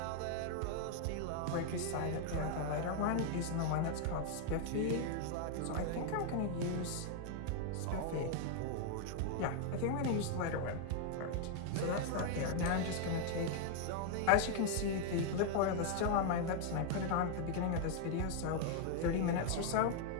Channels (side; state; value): both; different; correlation 0.00